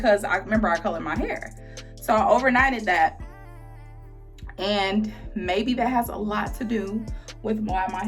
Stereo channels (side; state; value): both; identical; correlation 1.00